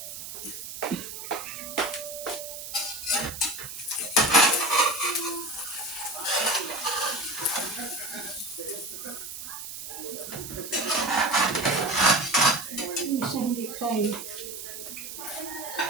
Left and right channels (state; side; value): noise; right; hiss, 9 dB below the sound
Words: Isa hindi tayo.